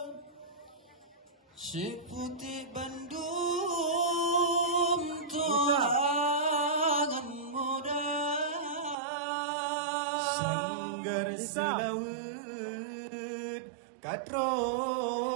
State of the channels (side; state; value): left; drops out; at 9.0 s